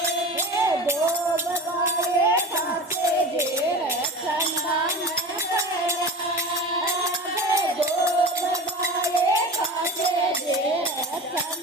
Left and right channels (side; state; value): both; normal; correlation 0.32